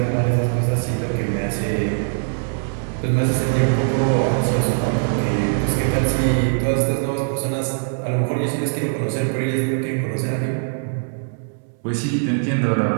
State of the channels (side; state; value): left; silent; 65 dB below the other